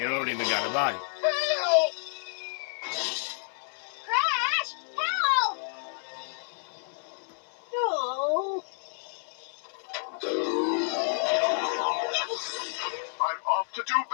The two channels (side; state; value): right; silent; digital silence